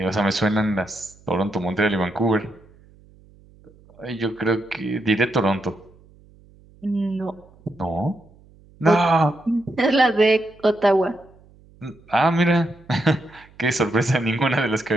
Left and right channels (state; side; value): noise; right; hum, 27 dB below the sound